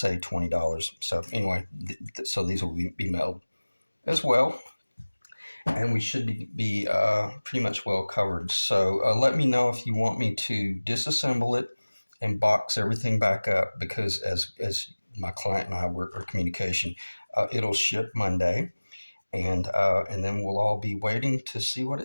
$20. So anyway, so these will be mailed as well, and we should be pretty much well covered. So let me know if you want me to disassemble it and box everything back up, because as my client and I were in communication, it'll ship Monday. And then we'll all be waiting to see what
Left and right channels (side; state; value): both; inverted; correlation -1.00